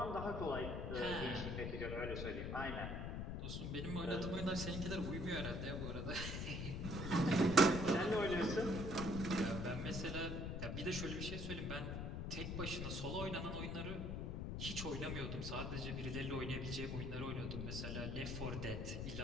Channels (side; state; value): left; noise; rumble, 3 dB below the sound